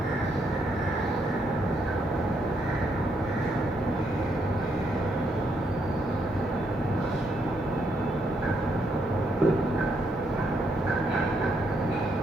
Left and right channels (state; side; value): normal; both; correlation 0.76